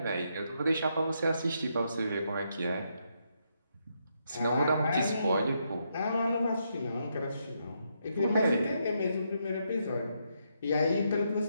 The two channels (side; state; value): both; inverted; correlation -0.79